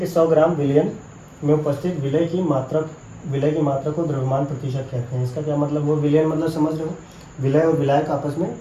100 ग्राम विलियन में उपस्थित विलय की मात्रा को द्रव्यमान प्रतिशत कहते हैं। इसका क्या मतलब, वो विलियन मतलब समझ रहे हो, विलय और विलायक आपस में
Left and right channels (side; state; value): both; identical; correlation 1.00